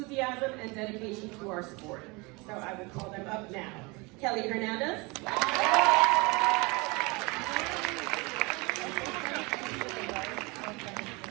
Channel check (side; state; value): left; quieter; 26.6 dB